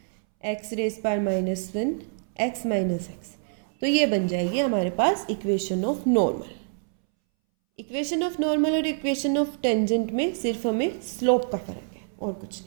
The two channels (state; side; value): silent; left; 61 dB below the other